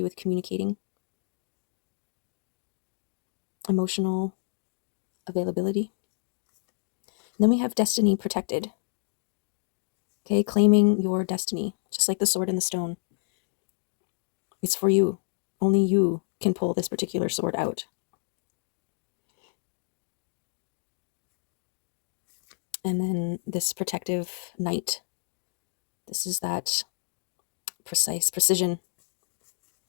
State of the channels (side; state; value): right; silent; 58 dB below the other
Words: with communicating, emotional availability. And then we have destiny protected. Okay, claiming your destiny, just like the sword and the stone. It's for you. Only you can pull this particular sword out. And then this protective knight. This is that precise precision.